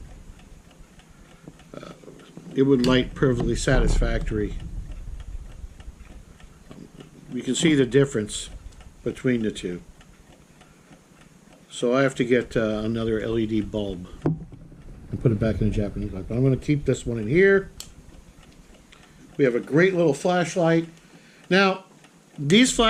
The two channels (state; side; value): identical; both; correlation 1.00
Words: it would light perfectly satisfactory. You can see the difference between the two. So I have to get another LED bulb and put it back in the Japanese light. But I'm going to keep this one in here. We have a great little flashlight. Now, these